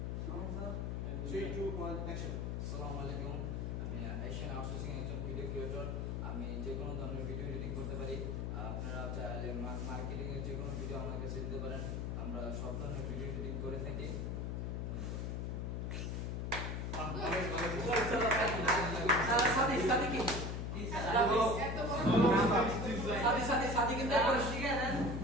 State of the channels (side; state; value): left; noise; hum, 2 dB below the sound